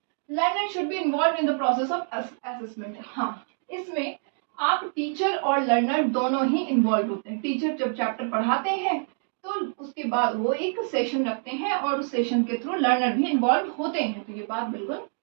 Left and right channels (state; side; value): silent; left; 61 dB below the other